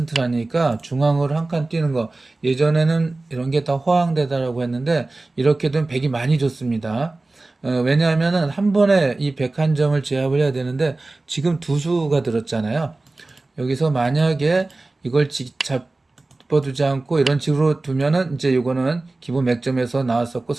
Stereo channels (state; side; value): quieter; left; 3.1 dB